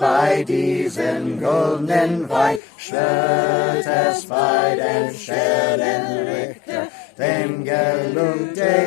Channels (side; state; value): right; drops out; at 2.6 s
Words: diesen goldenen Wein, schwört es bei den Sternen Richter, dem Gelung